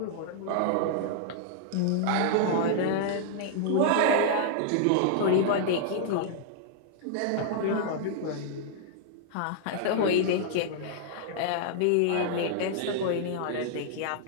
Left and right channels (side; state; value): both; different; correlation -0.01